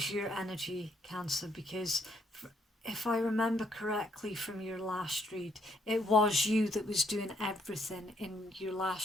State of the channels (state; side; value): normal; both; correlation 0.71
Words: your energy, Cancer, because if I remember correctly from your last read, it was you that was doing everything in your